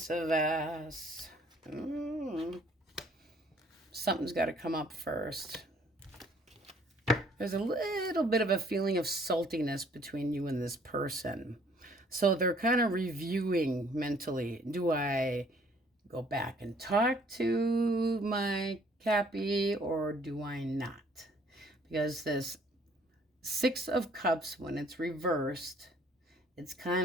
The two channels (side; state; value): both; normal; correlation 0.60